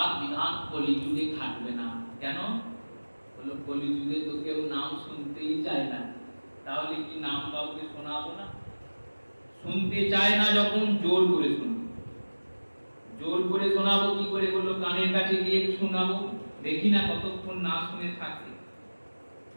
বিধান কলিযুগে খাটবে না। কেন? বলল, কলিযুগে তো কেউ নাম শুনতেই চায় না, তাহলে কি নাম কাউকে শোনাবো না? শুনতে চায় না যখন, জোর করে শুনবো। জোর করে শোনাবো কি করে? বললো, কানের কাছে গিয়ে শোনাবো, দেখি না কতক্ষণ না শুনে থাকে।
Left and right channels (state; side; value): inverted; both; correlation -1.00